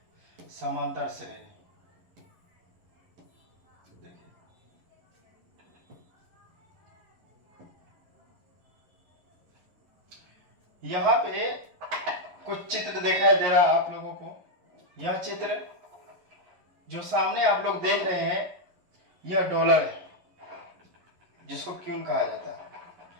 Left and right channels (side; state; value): left; late; 11 ms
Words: समांतर श्रेणी यहाँ पे कुछ चित्र दिखाई दे रहा है आप लोगों को। यह चित्र जो सामने आप लोग देख रहे हैं यह डॉलर है, जिसको क्यून कहा जाता है।